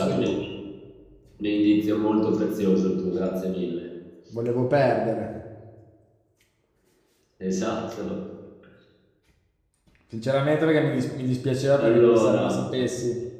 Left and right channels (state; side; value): identical; both; correlation 1.00